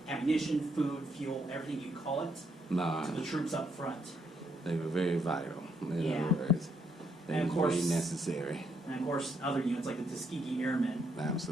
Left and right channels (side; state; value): both; normal; correlation 0.75